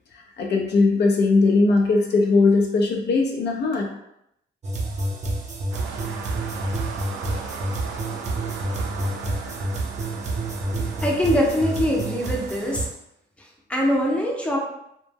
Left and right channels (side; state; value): both; normal; correlation 0.77